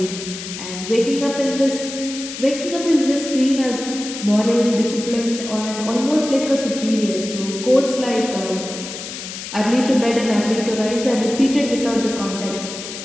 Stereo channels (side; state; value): left; noise; hiss, 9 dB below the sound